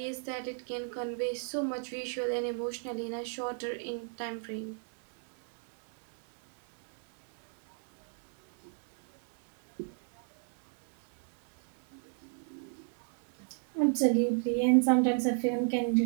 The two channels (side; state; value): left; silent; 54 dB below the other